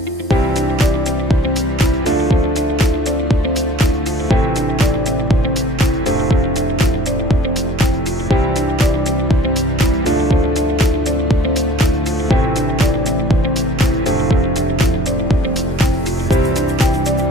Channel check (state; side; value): normal; both; correlation 0.48